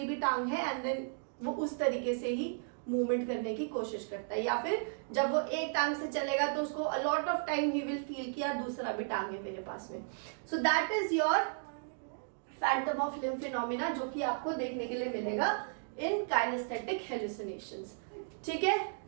भी टांग है, एंड देन वो उस तरीके से ही मूवमेंट करने की कोशिश करता है। या फिर जब वो एक टांग से चलेगा तो उसको a lot of time he will feel कि यार दूसरा भी टांग है मेरे पास में। सो that is your Phantom of limb phenomena, जो कि आपको देखने के लिए मिलेगा इन काइनेस्थेटिक हेलुसिनेशंस, ठीक है।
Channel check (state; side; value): silent; left; digital silence